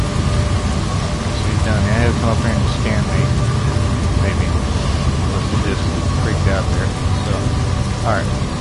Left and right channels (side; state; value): both; identical; correlation 1.00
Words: Come up here and scan me. Maybe. Unless he just freaked out there. So, alright.